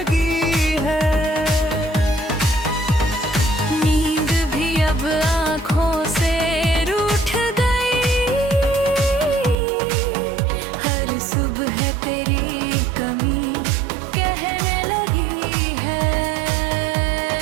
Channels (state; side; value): drops out; left; at 9.6 s